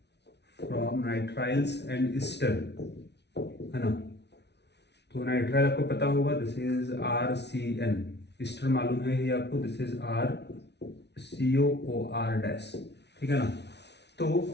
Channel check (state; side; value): late; right; 0.50 ms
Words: and Easter है ना। तो नाइट्राइल आपको पता होगा, दिस इज RCN, ईस्टर मालूम है ये आपको, दिस इज RCOOR-, ठीक है ना।